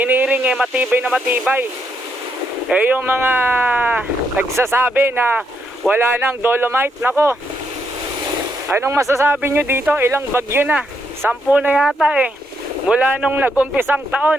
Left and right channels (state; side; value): normal; both; correlation 0.77